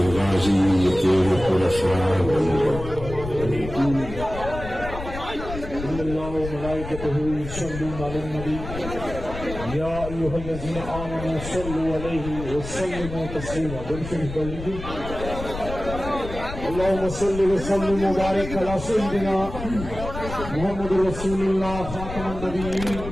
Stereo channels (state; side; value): noise; left; rumble, 9 dB below the sound